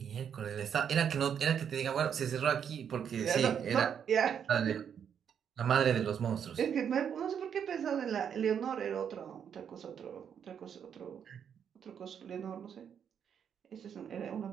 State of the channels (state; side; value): quieter; left; 8.0 dB